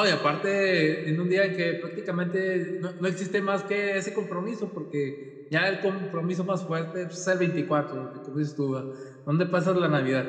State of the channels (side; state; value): both; identical; correlation 1.00